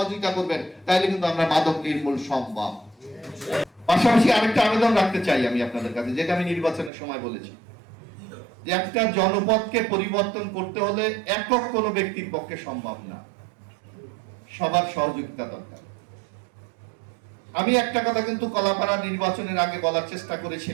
করবেন, তাহলে কিন্তু আমরা মাদক নির্মূল সম্ভব। পাশাপাশি আরেকটা আবেদন রাখতে চাই আমি আপনাদের কাছে, যেটা আমি নির্বাচনের সময় বলেছি, যে একটা জনপদকে পরিবর্তন করতে হলে একক কোনো ব্যক্তির পক্ষে সম্ভব না, সবার সহযোগিতা দরকার। আমি একটা কথা কিন্তু কলাপাড়া নির্বাচনের আগে বলার চেষ্টা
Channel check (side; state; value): left; drops out; at 6.9 s